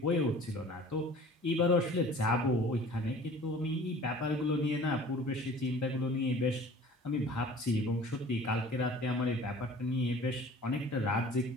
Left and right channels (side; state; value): both; normal; correlation 0.46